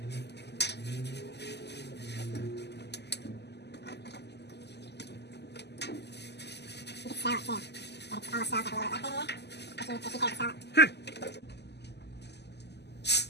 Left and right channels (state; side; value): late; right; 0.49 ms